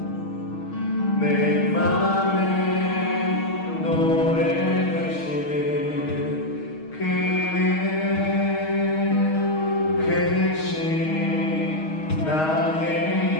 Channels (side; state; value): right; late; 6.4 ms